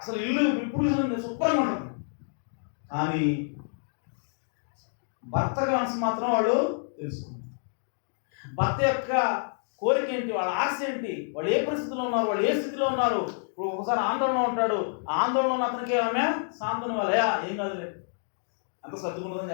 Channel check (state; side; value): silent; right; digital silence